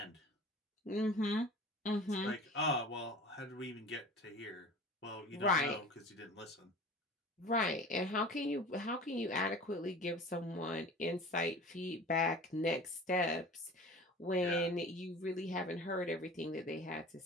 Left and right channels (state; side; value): normal; both; correlation 0.40